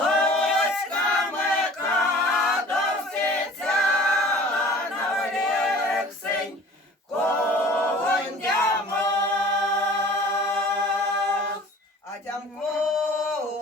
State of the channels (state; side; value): normal; both; correlation 0.46